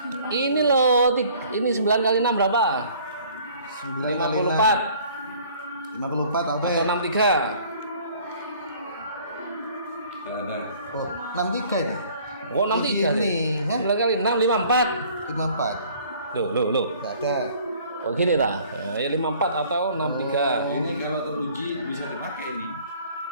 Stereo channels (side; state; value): both; inverted; correlation -0.54